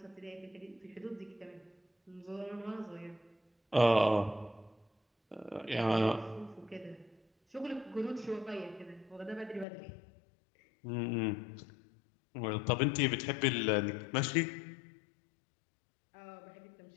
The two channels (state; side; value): drops out; right; at 9.7 s